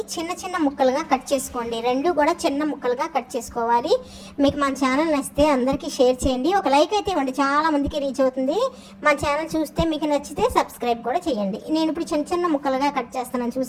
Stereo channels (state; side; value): identical; both; correlation 1.00